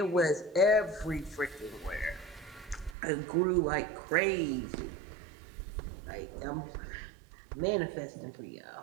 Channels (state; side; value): drops out; left; at 3.0 s